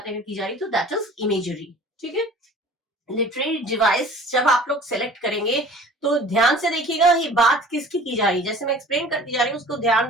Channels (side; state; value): both; normal; correlation 0.46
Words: अगर की जा रही तो दैट इज इमेजरी, ठीक है। लिटरेरी डिवाइस जब आप लोग सेलेक्ट करेंगे तो ध्यान से देखिएगा ये बात किसकी की जा रही है, जैसे मैं एक्सप्लेन करती जा रही हूँ उसको